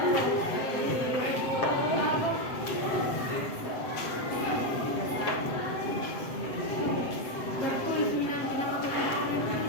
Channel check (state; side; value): late; right; 7.9 ms